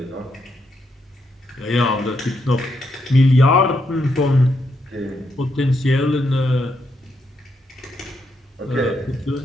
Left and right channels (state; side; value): normal; both; correlation 0.79